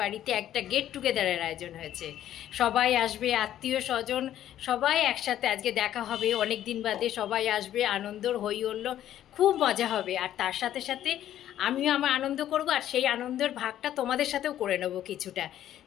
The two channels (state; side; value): quieter; right; 11.8 dB